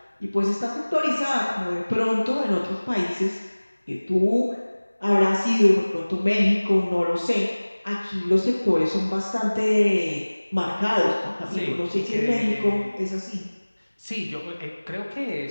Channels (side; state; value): both; inverted; correlation -1.00